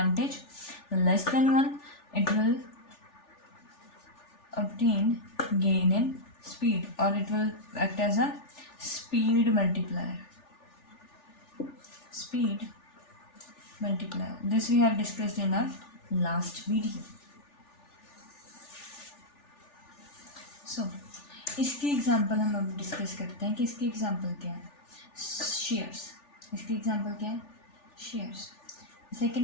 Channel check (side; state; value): right; late; 3.4 ms